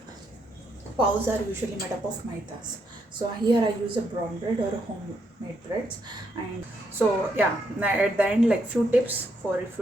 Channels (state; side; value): normal; both; correlation 0.77